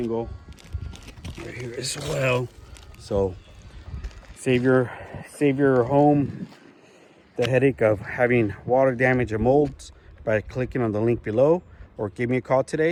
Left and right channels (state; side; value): identical; both; correlation 1.00